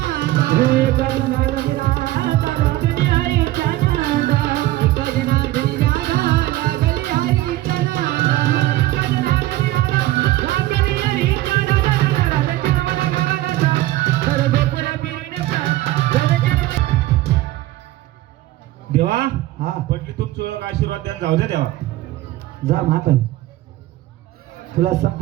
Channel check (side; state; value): left; quieter; 16.1 dB